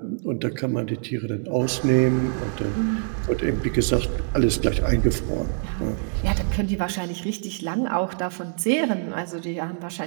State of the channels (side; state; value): left; silent; 62 dB below the other